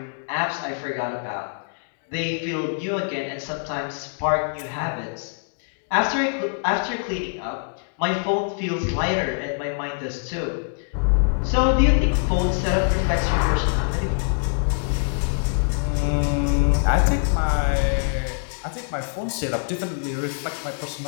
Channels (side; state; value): right; silent; digital silence